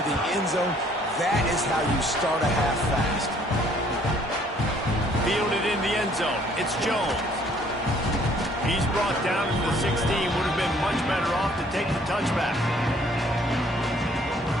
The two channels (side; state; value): both; normal; correlation 0.61